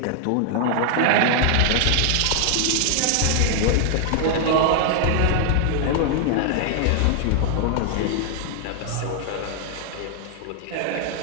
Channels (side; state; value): both; different; correlation 0.00